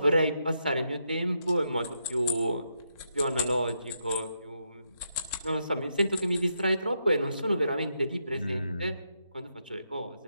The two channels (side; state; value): both; inverted; correlation -0.81